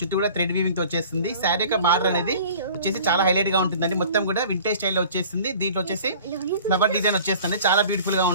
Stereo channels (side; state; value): both; inverted; correlation -0.46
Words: కూడా థ్రెడ్ వీవింగ్తో వచ్చేస్తుంది. శారీ యొక్క బార్డర్ అనేది వచ్చేసి చాలా హైలైట్గా ఉంటుందండి. మొత్తం కూడా వింటేజ్ స్టైల్లో వచ్చేస్తుంది. దీంట్లో వచ్చేసి ఫ్లవర్ డిజైన్ వచ్చేస్తుంది, చాలా బ్యూటిఫుల్గా